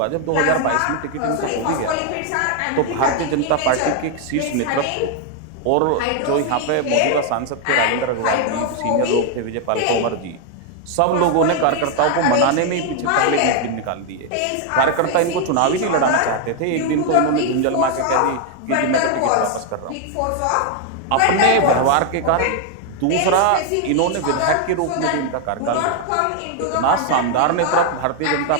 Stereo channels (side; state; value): both; different; correlation 0.00